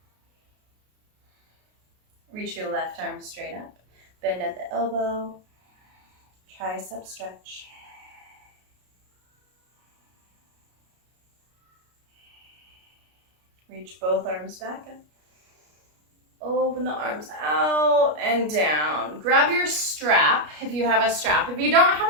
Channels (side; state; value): left; late; 33 ms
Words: Reach your left arm straight up. Bend at the elbow. Tricep stretch. Reach both arms back up. Open the arms out and down. Grab your strap if you have a strap. If you don't